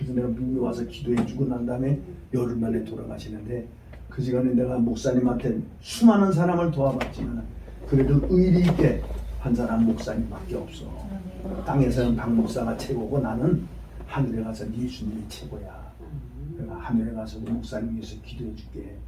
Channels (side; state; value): both; identical; correlation 1.00